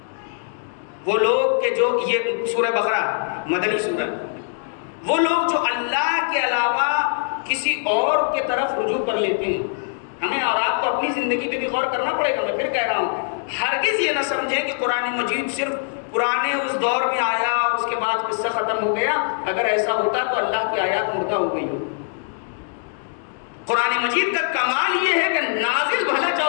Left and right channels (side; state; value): right; silent; digital silence